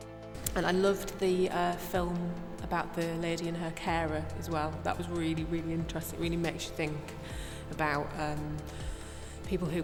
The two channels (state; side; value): identical; both; correlation 1.00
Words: And I loved the film about the lady and her carer as well. That was really, really interesting. It really makes you think about people who